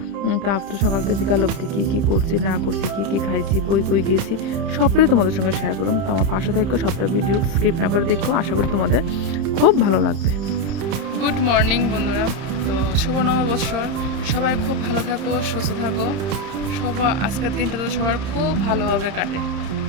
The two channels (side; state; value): left; late; 31 ms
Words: তো আপ টু সকাল থেকে বিকাল অবধি কী করছি না করছি, কী খাইছি, কই গিয়েছি, সবটাই তোমাদের সঙ্গে শেয়ার করুম। তো আমার পাশে থাকো, সবটা ভিডিও স্কিপ না করে দেখো, আশা করি তোমাদের খুব ভালো লাগবে। গুড মর্নিং বন্ধুরা। তো শুভ নববর্ষর, সবাই খুব ভালো থাকো, সুস্থ থাকো। আজকের দিনটা তো সবার খুব ভালোভাবে কাটে,